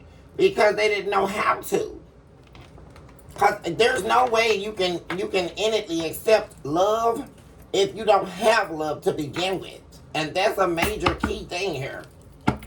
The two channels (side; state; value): both; identical; correlation 1.00